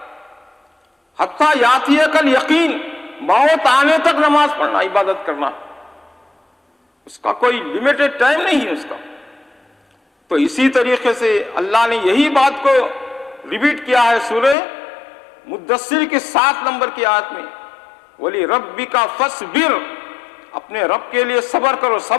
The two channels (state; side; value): drops out; right; at 14.6 s